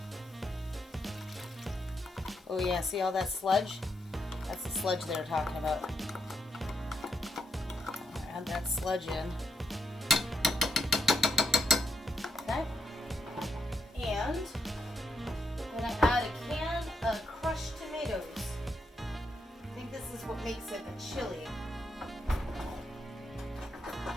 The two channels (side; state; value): both; normal; correlation 0.79